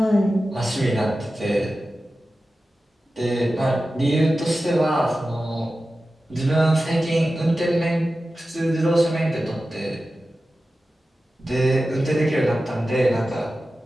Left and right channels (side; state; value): both; normal; correlation 0.94